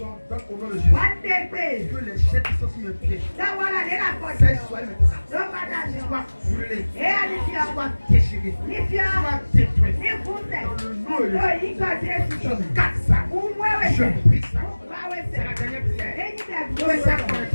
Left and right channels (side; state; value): both; inverted; correlation -1.00